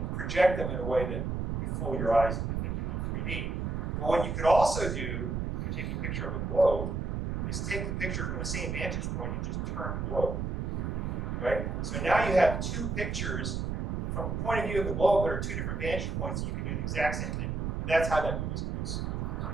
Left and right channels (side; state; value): right; noise; rumble, 1 dB below the sound